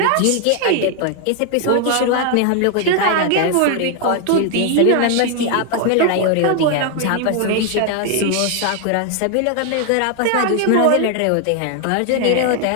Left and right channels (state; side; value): different; both; correlation 0.00